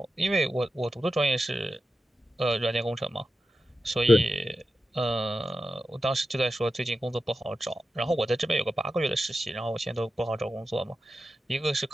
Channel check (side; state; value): both; normal; correlation 0.92